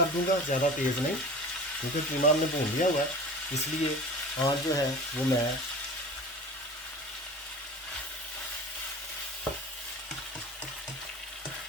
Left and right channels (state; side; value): normal; both; correlation 0.37